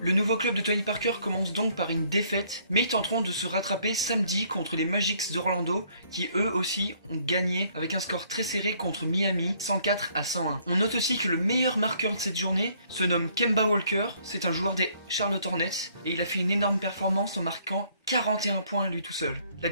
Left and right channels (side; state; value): both; inverted; correlation -0.64